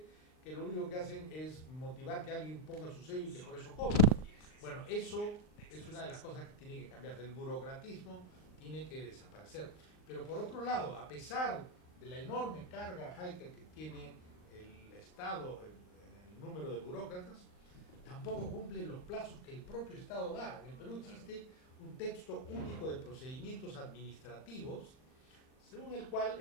que lo único que hacen es motivar que alguien ponga su sello y que por eso cobre. Bueno, eso es una de las cosas que tiene que cambiar. El burocratismo tiene que desaparecer. Pero por otro lado, a pesar de la enorme carga, Heiker, que tiene el Estado, el número de burócratas, tampoco cumple los plazos que el propio Estado da. En el Perú existe un texto único de procedimientos administrativos, según el cual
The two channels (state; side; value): late; right; 39 ms